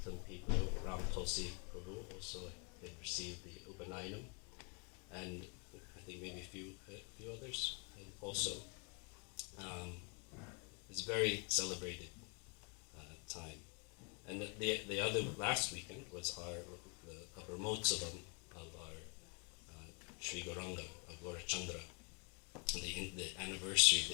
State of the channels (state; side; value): quieter; right; 33.3 dB